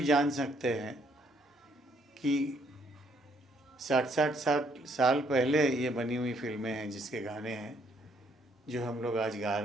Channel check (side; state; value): both; normal; correlation 0.68